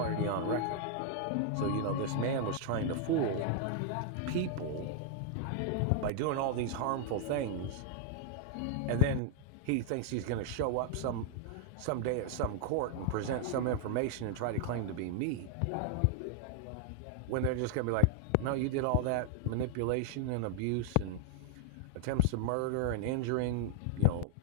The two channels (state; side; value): different; both; correlation 0.00